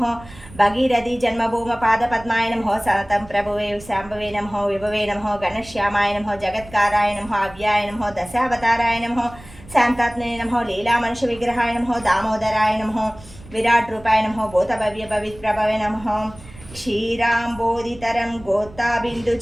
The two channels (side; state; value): right; noise; rumble, 20 dB below the sound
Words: భగీరథి జన్మభూమ పాదపద్మాయ నమః, సతతం ప్రభువే శాంభవే నమః, విభవే నమః, గణశ్యామాయ నమః, జగత్కారాయ నమః, అవ్యాయ నమః, దశావతారాయ నమః, శాంతాత్మనే నమః, లీలా మనుష్య విగ్రహాయ నమః, దామోదరాయ నమః, విరాట్ రూపాయ నమః, భూతభవ్య పవిత్రభవే నమః, క్షీరాంబోధితరం గోత్తాబిందు